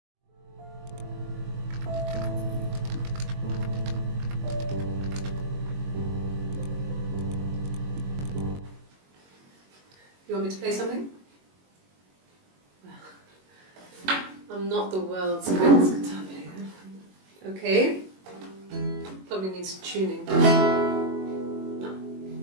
You want me to play something? I'm not the world's greatest guitar player. Okay. Probably needs tuning. No,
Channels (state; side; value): late; left; 21 ms